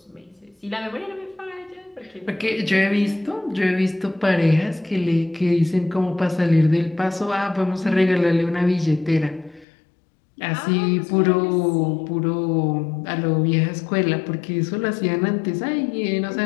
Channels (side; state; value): right; drops out; at 9.7 s